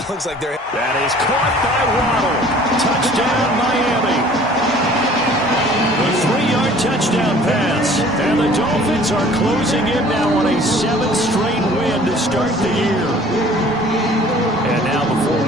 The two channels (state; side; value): normal; both; correlation 0.51